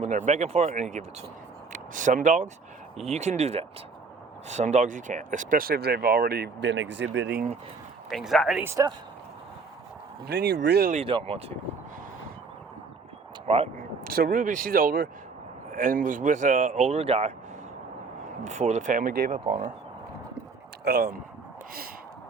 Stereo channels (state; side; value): quieter; left; 4.6 dB